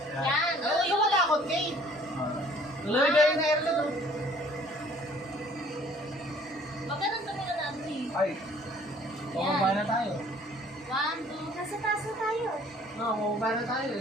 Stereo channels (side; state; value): both; normal; correlation 0.56